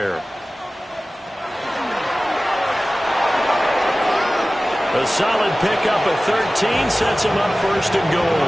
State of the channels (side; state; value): both; normal; correlation 0.97